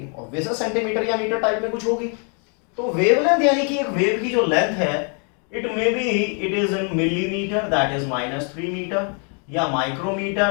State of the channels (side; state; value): right; quieter; 39.8 dB